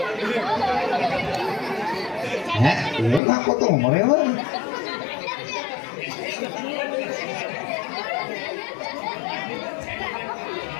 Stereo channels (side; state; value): right; drops out; at 3.2 s